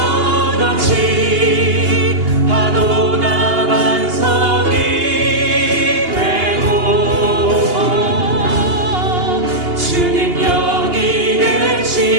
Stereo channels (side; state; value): left; late; 2.8 ms